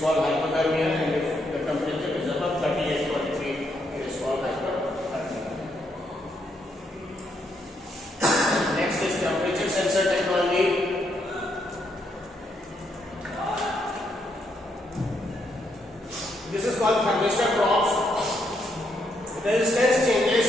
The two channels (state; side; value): normal; both; correlation 0.77